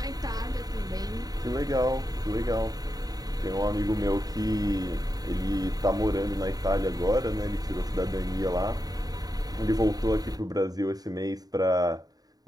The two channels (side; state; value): left; late; 0.18 ms